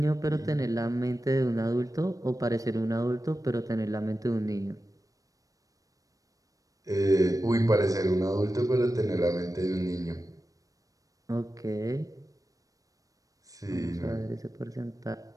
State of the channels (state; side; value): late; left; 0.16 ms